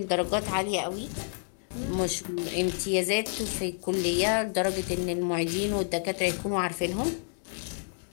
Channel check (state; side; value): silent; right; digital silence